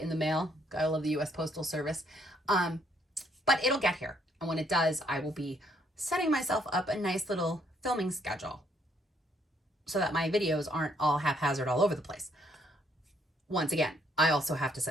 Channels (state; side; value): normal; both; correlation 0.69